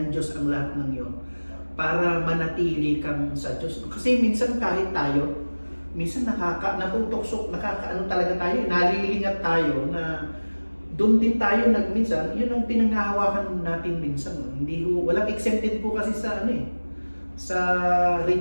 Diyos ang lahat ng yun para manatili kang sa Diyos. Kasi minsan kahit tayo, minsan natutuksok, nakakaano talaga tayo, nalilingat tayo na doon din tayo minsan, yun ang pinanghahawakan natin minsan. Hindi walang exempted po kasi sa sa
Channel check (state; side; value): inverted; both; correlation -1.00